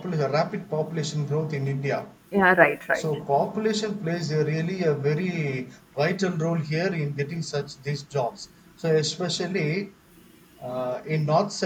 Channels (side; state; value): both; identical; correlation 1.00